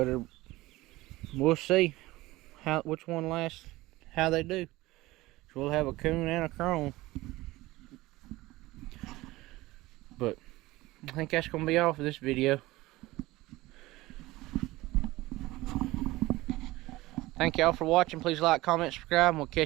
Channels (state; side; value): quieter; left; 19.0 dB